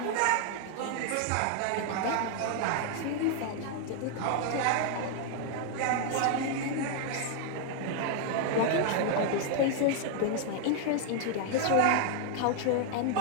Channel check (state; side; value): different; both; correlation 0.00